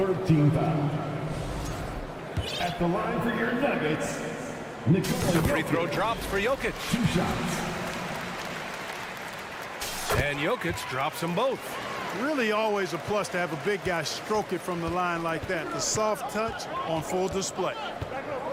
foul. At the line for your Nuggets, Nikola Free throw drops for Jokic. 2 shots. And Jokic drops them both. Really always a plus to have a big guy stroke it from the line like that. The soft touch on full display.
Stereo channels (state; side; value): identical; both; correlation 1.00